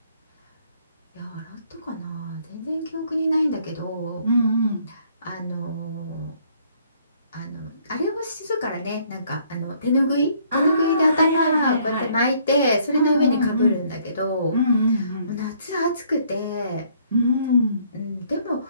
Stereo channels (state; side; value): inverted; both; correlation -0.64